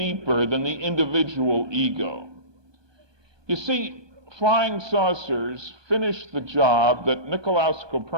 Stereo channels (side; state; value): left; late; 1.2 ms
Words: than the individual ego. You see, flying saucers finished the job that Nicolaus